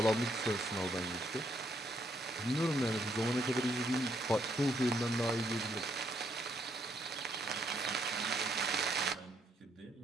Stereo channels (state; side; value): normal; both; correlation 0.73